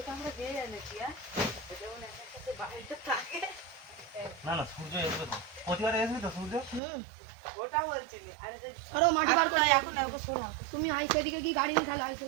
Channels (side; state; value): left; drops out; at 6.8 s